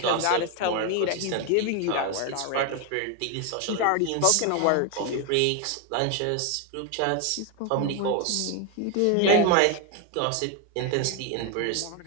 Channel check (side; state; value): both; different; correlation 0.01